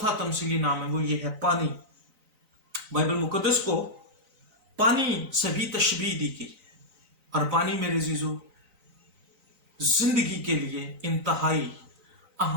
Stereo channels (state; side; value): late; left; 3.9 ms